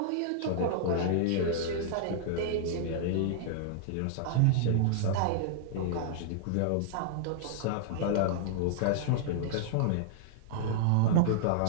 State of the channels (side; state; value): both; different; correlation -0.01